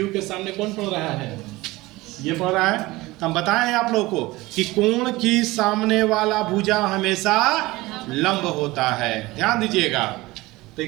के सामने कौन पढ़ रहा है? ये पढ़ रहा है। तो हम बताए हैं आप लोगों को कि कोण की सामने वाला भुजा हमेशा लंब होता है, ध्यान दीजिएगा। तो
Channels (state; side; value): quieter; left; 20.2 dB